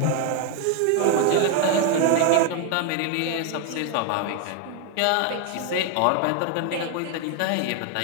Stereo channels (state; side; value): different; both; correlation 0.01